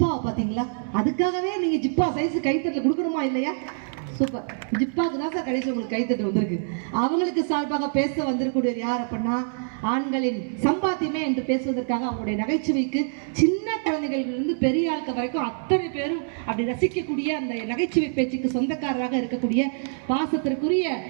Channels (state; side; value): silent; left; 62 dB below the other